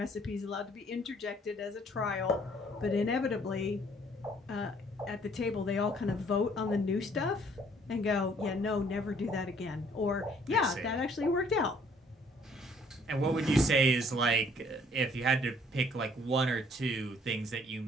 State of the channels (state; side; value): normal; both; correlation 0.61